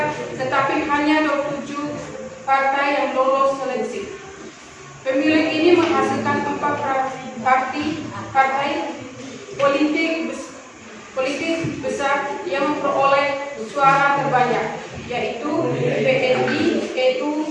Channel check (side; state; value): both; identical; correlation 1.00